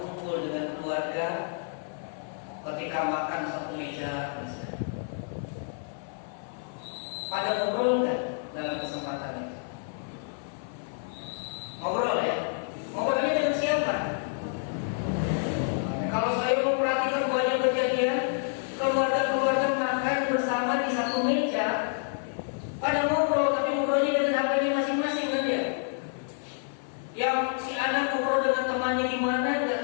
dengan keluarga, ketika makan satu meja misalnya. Pada ngobrol nggak dalam kesempatan itu? Ngobrol ya? Ngobrolnya dengan siapa? Kalau saya memperhatikan banyak kejadian keluarga-keluarga makan bersama di satu meja, pada ngobrol tapi ngobrolnya dengan HP-nya masing-masing kan ya? Yang si anak ngobrol dengan temannya di mana nggak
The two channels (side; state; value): right; silent; 58 dB below the other